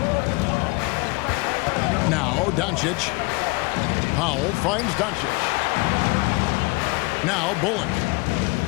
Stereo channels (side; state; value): right; quieter; 27.0 dB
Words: Now Doncic. Powell finds Doncic. Now Bullock.